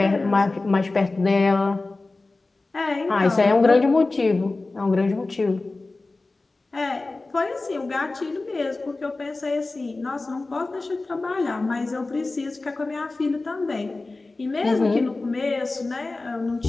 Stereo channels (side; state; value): right; quieter; 3.3 dB